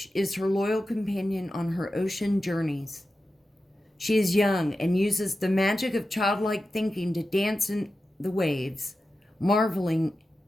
is her loyal companion on her ocean journeys. She is young and uses the magic of childlike thinking to dance in the waves, marveling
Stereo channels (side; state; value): both; normal; correlation 0.92